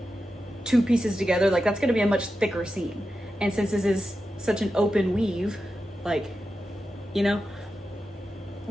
2 pieces together, like that's going to be a much thicker seam. And since this is such an open weave, like, you know,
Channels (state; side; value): normal; both; correlation 0.91